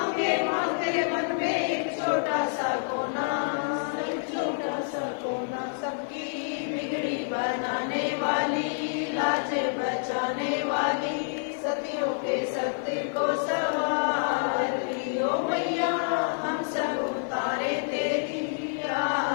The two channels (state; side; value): silent; right; digital silence